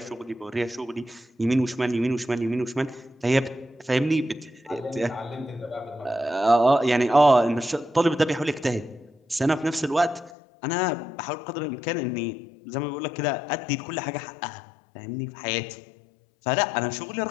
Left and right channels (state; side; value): drops out; right; at 10.3 s